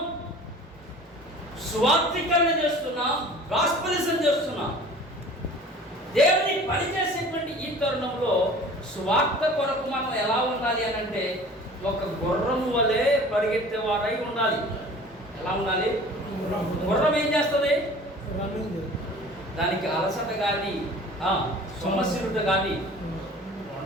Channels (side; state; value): both; normal; correlation 0.44